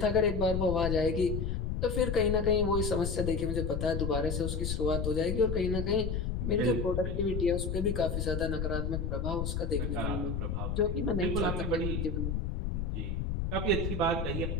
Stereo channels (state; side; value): noise; left; rumble, 1 dB below the sound